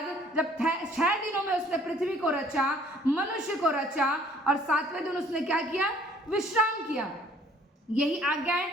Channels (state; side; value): normal; both; correlation 0.57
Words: जब 6 दिनों में उसने पृथ्वी को रचा, मनुष्य को रचा, और 7वें दिन उसने क्या किया, विश्राम किया। यही आज्ञाएं